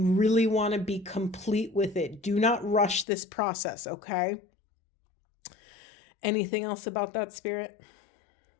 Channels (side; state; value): right; drops out; at 3.1 s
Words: really want to be complete with it. Do not rush this process, okay? Anything else about that, Spirit?